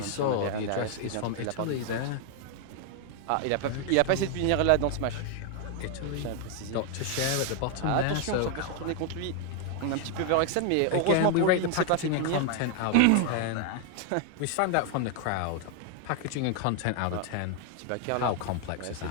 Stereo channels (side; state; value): both; different; correlation 0.00